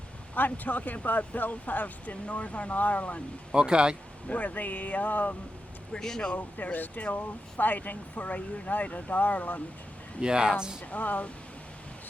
I'm talking about Belfast in Northern Ireland, Okay. where they're still fighting for a united Ireland. Yes. And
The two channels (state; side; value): normal; both; correlation 0.88